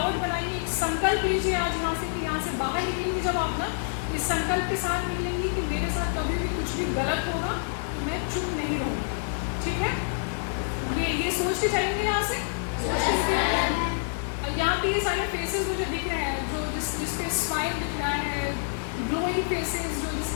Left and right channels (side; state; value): right; silent; digital silence